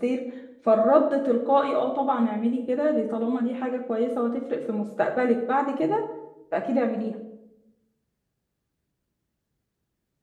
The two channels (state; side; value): identical; both; correlation 1.00